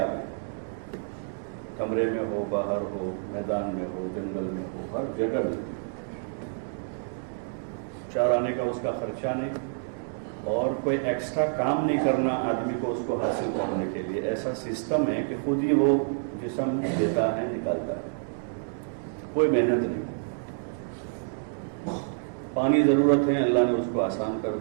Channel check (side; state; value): left; silent; digital silence